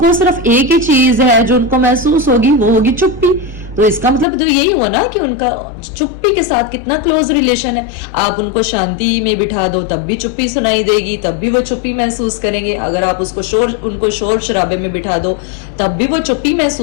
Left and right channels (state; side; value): drops out; right; at 4.2 s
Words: सिर्फ एक ही चीज है जो उनको महसूस होगी, वो होगी चुप्पी। तो इसका मतलब तो यही हुआ ना कि उनका चुप्पी के साथ कितना क्लोज रिलेशन है। आप उनको शांति में बिठा दो तब भी चुप्पी सुनाई देगी, तब भी वो चुप्पी महसूस करेंगे। अगर आप उनको शोर शराबे में बिठा दो तब भी वो चुप्पी